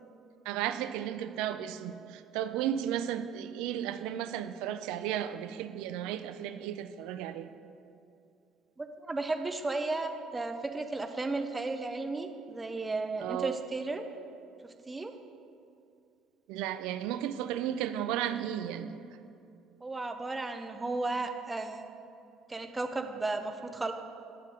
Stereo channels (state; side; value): quieter; left; 5.6 dB